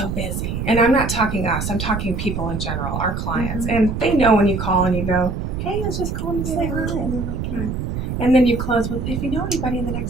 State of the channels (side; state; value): right; noise; rumble, 4 dB below the sound